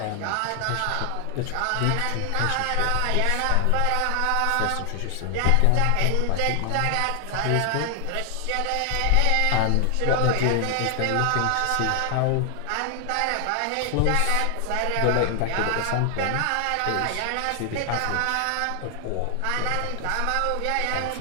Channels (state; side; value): different; both; correlation 0.00